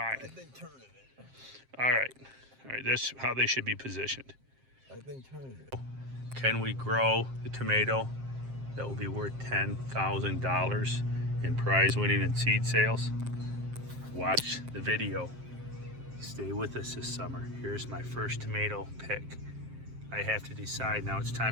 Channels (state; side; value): late; left; 7.6 ms